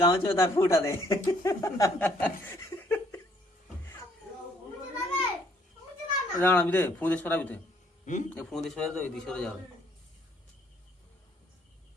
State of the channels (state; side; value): normal; both; correlation 0.65